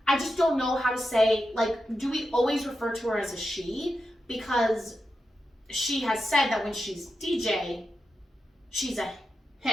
I just don't know how to say, do we always refer to her as a she? Because she has said that when she's DJ, she's a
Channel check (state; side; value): normal; both; correlation 0.89